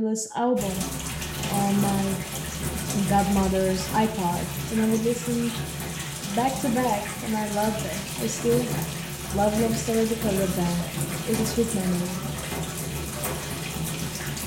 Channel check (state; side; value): identical; both; correlation 1.00